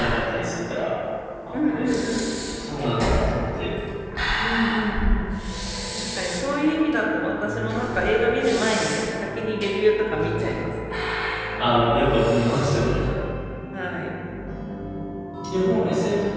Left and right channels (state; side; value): identical; both; correlation 1.00